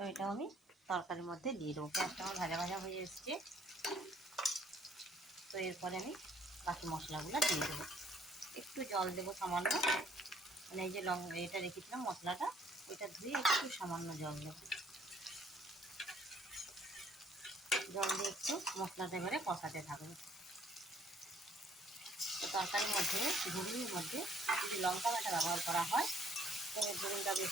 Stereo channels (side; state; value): both; normal; correlation 0.62